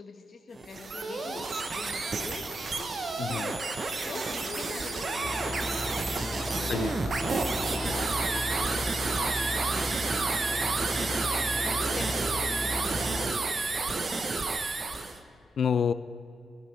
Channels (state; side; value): normal; both; correlation 0.86